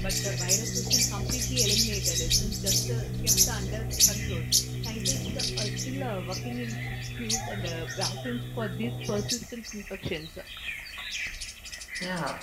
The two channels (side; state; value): both; identical; correlation 1.00